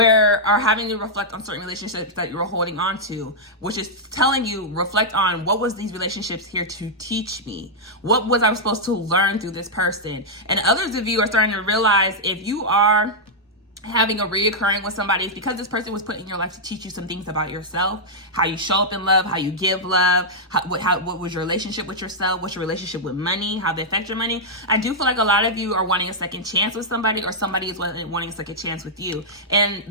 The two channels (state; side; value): normal; both; correlation -0.06